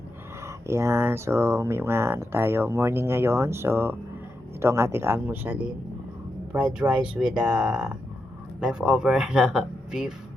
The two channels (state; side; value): normal; both; correlation 0.86